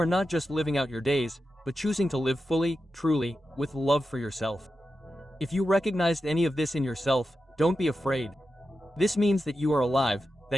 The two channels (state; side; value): normal; both; correlation 0.90